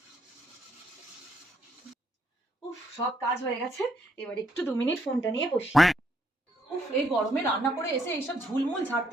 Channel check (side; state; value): both; normal; correlation 0.72